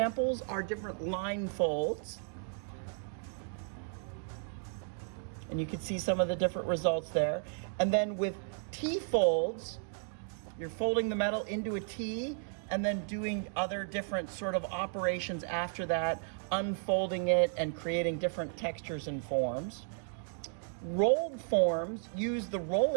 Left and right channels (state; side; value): silent; left; 55 dB below the other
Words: are different line folds. And you can see some of the different results there. And then with T folds, you're folding the metal into a T and then doing other different sort of operations after that, unfolding it and creating different textures and forms. Rolled forms use the